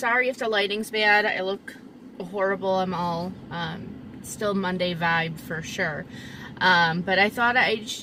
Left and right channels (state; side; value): identical; both; correlation 1.00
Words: if the lighting's bad. I look horrible. I'm all still Monday vibe for sure. But I thought I'd